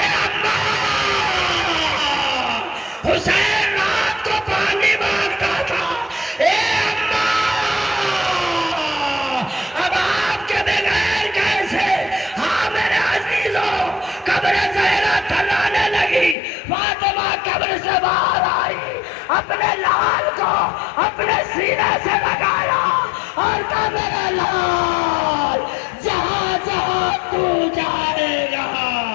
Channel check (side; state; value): right; drops out; at 16.4 s